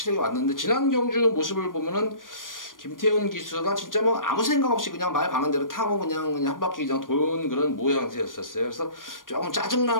왔는데 지난 경주 모습을 보면은 김태훈 기수가 진짜 뭐 아무 생각 없이 그냥 말 가는 대로 타고 그냥 한 바퀴 그냥 도는 그런 모양새였었어요. 그래서 조금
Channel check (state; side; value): late; right; 0.90 ms